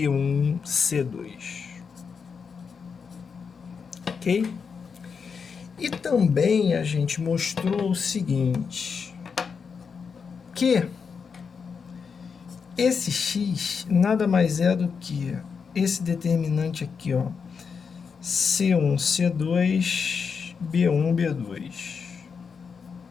Ok? E também a gente mostrou o seguinte, que esse x nada mais é do que esse determinante aqui, ó, C1, C2, B1, B2,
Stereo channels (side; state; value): right; quieter; 5.9 dB